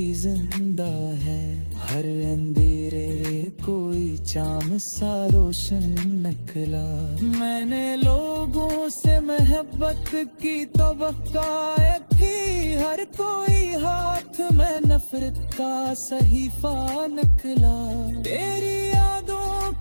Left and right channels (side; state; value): both; inverted; correlation -1.00